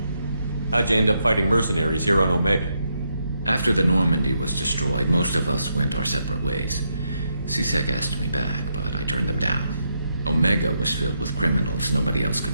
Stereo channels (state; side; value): inverted; both; correlation -0.80